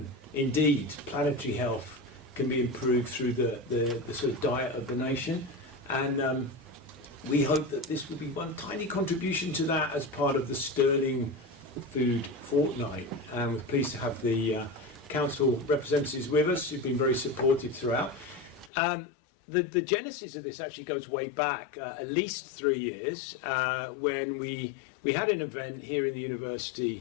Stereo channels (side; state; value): right; drops out; at 18.7 s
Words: indeed planetary health can be improved through the sort of diet of the nation. And we hope that this will be one tiny contribution to that as part of the Stirling Food Fortnight. And we're pleased to have the council representatives with us who've been very supportive throughout. The genesis of this actually goes way back, at least 3 years, when we had an event here in the